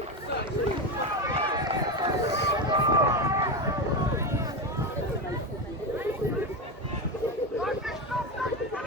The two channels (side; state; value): both; normal; correlation 0.16